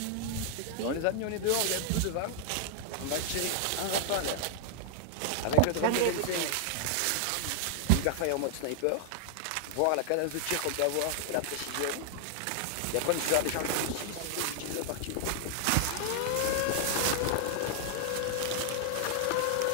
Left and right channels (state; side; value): different; both; correlation 0.00